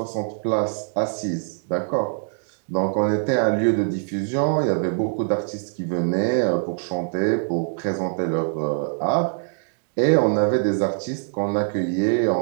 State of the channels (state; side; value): silent; left; digital silence